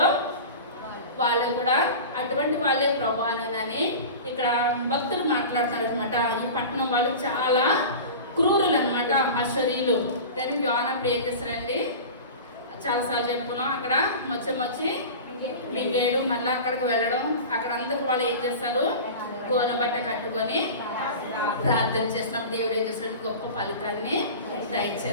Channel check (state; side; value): inverted; both; correlation -0.33